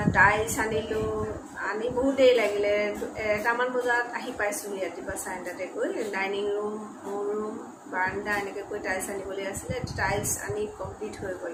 টাইলছ আনিলোঁ, আনি বহুত দেৰি লাগিলে। 1টামান বজাত আহি পাইছোঁহি ৰাতিপুৱা 9:30টাতে গৈ। ডাইনিং ৰুম, মোৰ ৰুম, বাৰাণ্ডা এনেকৈ গৈ টাইলছ আনিবলৈ আছিলে। টাইলছ আনি কমপ্লিট হৈ গ'ল।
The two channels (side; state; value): both; identical; correlation 1.00